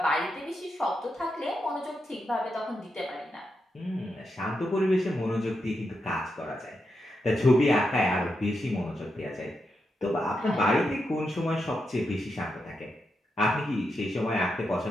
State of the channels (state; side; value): normal; both; correlation 0.85